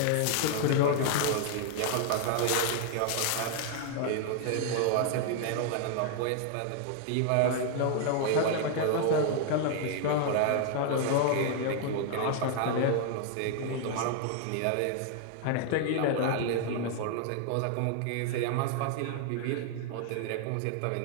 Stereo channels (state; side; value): different; both; correlation 0.00